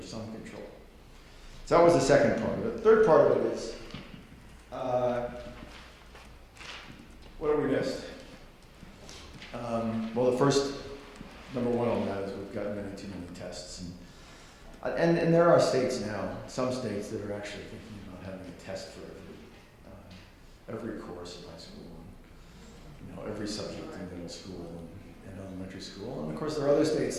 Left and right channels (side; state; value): both; identical; correlation 1.00